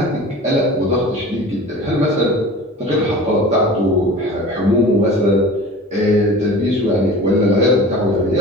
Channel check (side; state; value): both; normal; correlation 0.39